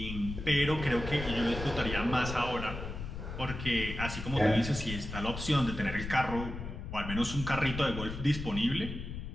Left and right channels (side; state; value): left; noise; rumble, 7 dB below the sound